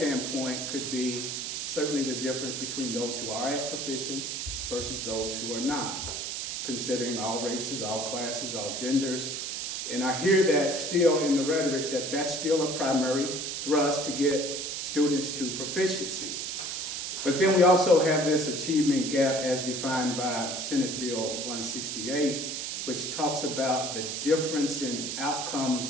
could be certainly the difference between those who are at proficient versus those who are not, considering all races, all classes, all genders. And I hear that still in the rhetoric that that's still a primary thrust to get students to proficiency. But then we also have this achievement gap as defined by Senate Bill 168, which talks about the difference in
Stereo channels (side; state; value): right; noise; hiss, 4 dB below the sound